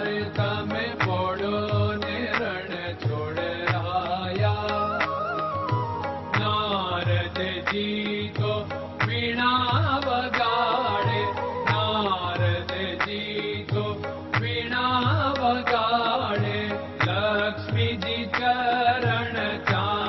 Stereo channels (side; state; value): both; identical; correlation 1.00